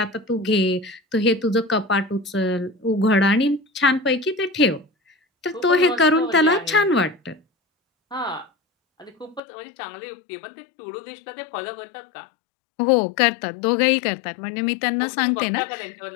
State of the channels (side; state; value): right; drops out; at 9.4 s